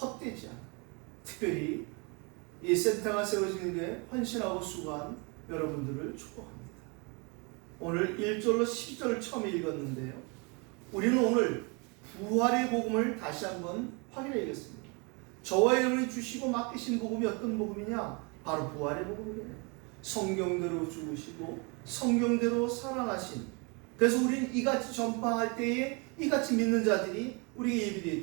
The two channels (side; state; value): left; quieter; 31.5 dB